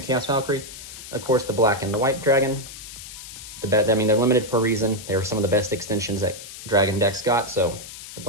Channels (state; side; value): noise; left; hiss, 13 dB below the sound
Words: Valkyrie. Of course, the black and the white dragon. They're limited for a reason. They were some of the best extensions that dragon decks got. So the